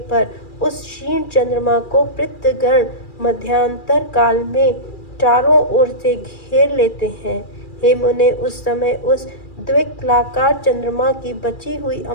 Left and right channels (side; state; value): right; late; 2.3 ms